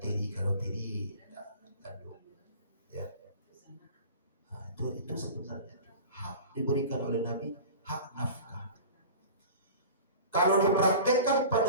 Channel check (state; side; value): inverted; both; correlation -0.38